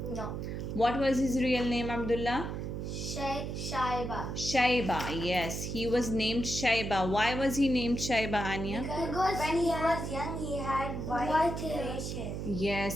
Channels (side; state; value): right; noise; hum, 4 dB below the sound